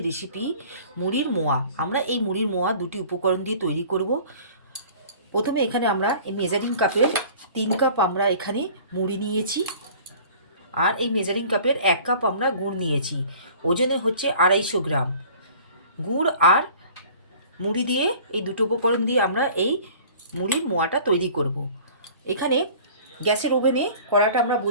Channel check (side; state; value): both; inverted; correlation -0.47